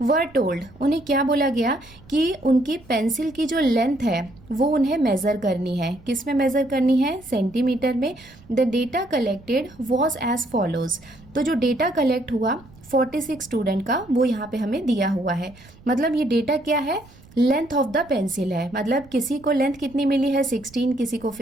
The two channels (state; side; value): noise; right; rumble, 24 dB below the sound